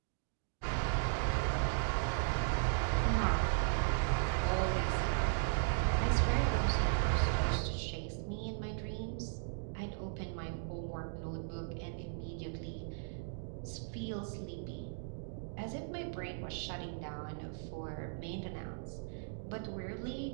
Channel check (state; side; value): silent; left; digital silence